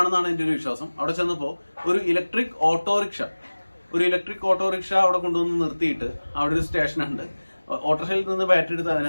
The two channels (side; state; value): both; inverted; correlation -1.00